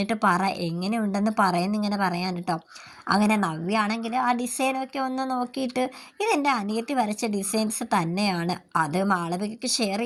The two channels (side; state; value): both; identical; correlation 1.00